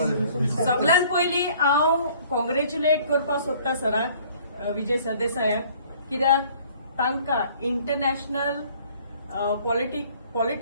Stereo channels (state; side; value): inverted; both; correlation -0.56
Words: सगळ्यात पयलीं हांव कॉंग्रॅच्युलेट करपाक सोदता सराक, विजय सरदेसायाक, कित्याक तांकां इंटरनॅशनल